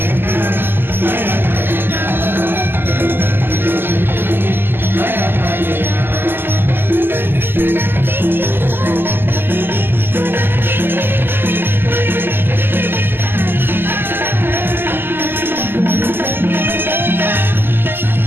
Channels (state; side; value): late; left; 0.099 ms